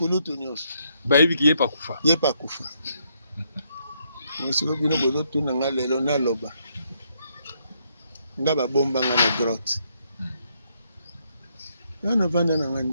nyonso bayebiki ye pakufa sikoyo bino bozotuna nga lelo naloba nga babomba nga na grotte ana vanda na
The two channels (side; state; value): both; inverted; correlation -0.74